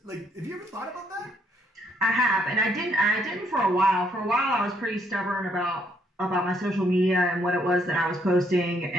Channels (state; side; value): normal; both; correlation 0.70